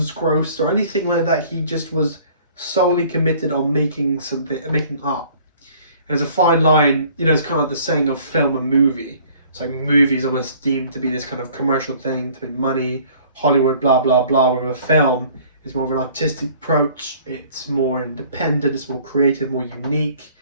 grossed or anything like that. He just was solely committed on making art. And there's a fine line, you know, it's kind of like the saying of film and movie. It's like movies almost deemed to be this kind of commercial thing, to make money, Hollywood, blah, blah, blah, with a film. It's more of an artistic approach, it's more independent, it's more creative, more unique.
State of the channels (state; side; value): inverted; both; correlation -0.54